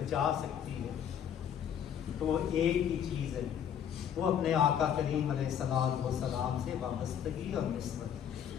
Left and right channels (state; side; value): quieter; right; 8.9 dB